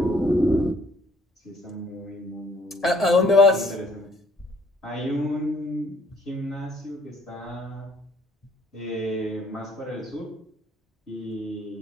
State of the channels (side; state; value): both; normal; correlation 0.62